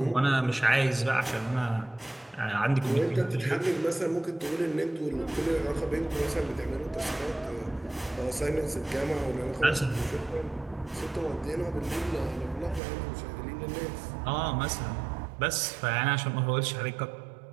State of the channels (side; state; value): left; drops out; at 12.8 s